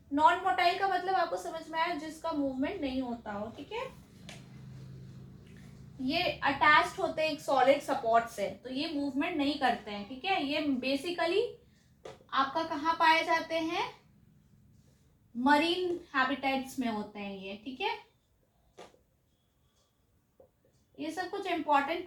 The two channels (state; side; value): identical; both; correlation 1.00